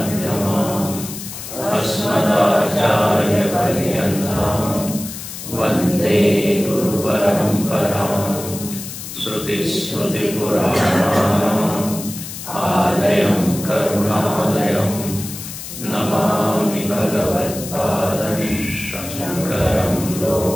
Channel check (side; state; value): left; noise; hiss, 10 dB below the sound